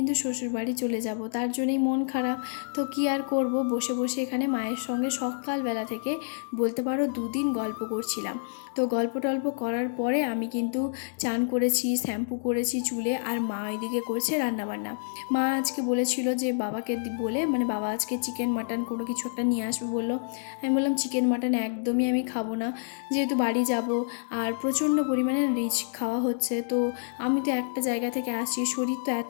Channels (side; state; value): right; silent; digital silence